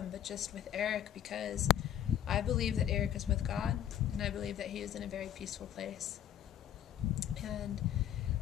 but just with Eric, because I believe that Eric is with God, and I believe that he is in a very peaceful place. And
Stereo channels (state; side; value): quieter; right; 10.6 dB